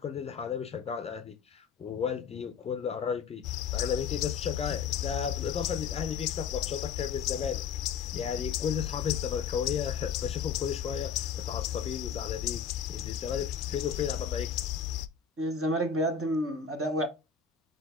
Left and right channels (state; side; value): quieter; right; 6.5 dB